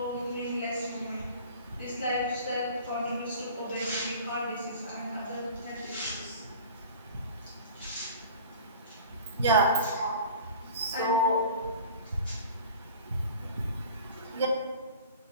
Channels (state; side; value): inverted; both; correlation -0.41